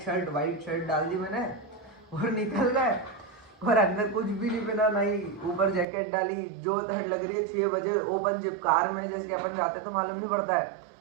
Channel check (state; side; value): drops out; left; at 5.9 s